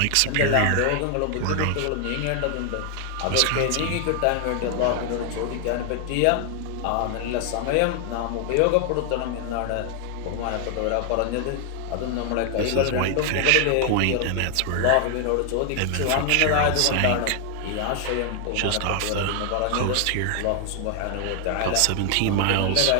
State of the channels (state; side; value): different; both; correlation 0.00